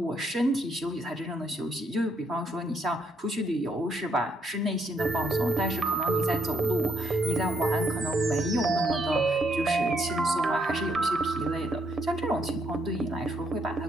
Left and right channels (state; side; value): normal; both; correlation 0.73